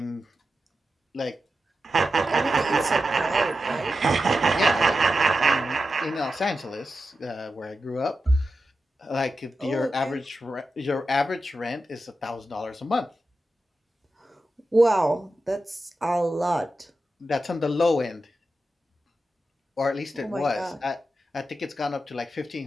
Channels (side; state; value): both; normal; correlation 0.90